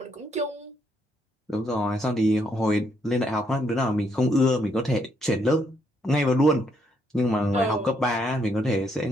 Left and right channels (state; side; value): normal; both; correlation 0.74